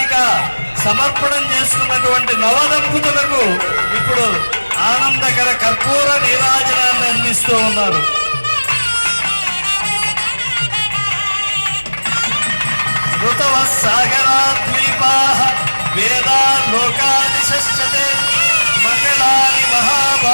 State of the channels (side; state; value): both; inverted; correlation -1.00